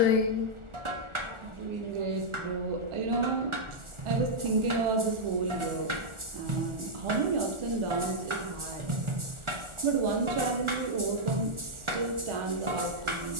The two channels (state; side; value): late; left; 1.4 ms